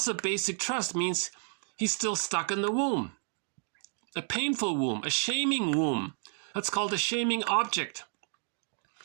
of basic trust means he's still stuck in the womb. A painful womb, a shaming womb. That's called a shaming object.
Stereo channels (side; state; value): left; silent; 57 dB below the other